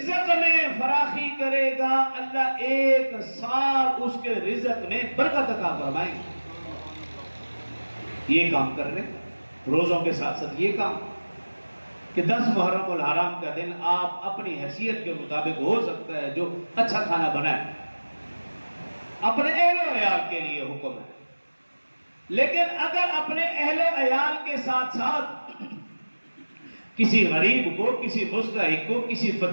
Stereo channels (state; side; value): inverted; both; correlation -1.00